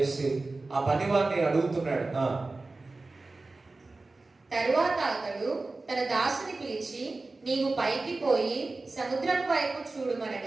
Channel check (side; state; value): left; quieter; 3.4 dB